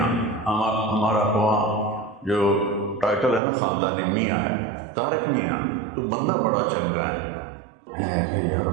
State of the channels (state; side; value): drops out; left; at 3.4 s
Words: ہمارا وہاں جو ٹائٹل ہے نا خاندانی میاں ہے، طارق میاں تو بندہ بڑا چنگا ہے کہ یار